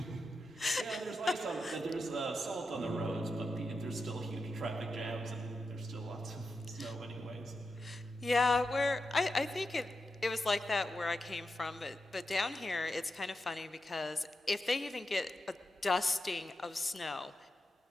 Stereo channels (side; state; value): both; normal; correlation 0.87